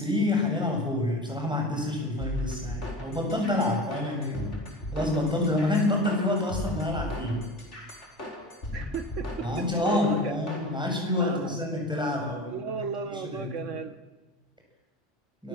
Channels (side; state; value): both; normal; correlation 0.32